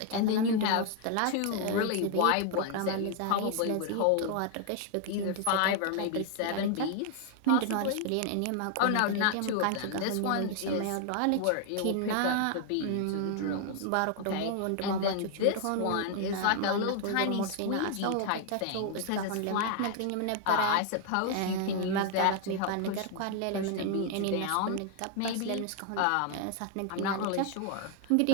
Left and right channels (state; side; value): different; both; correlation 0.00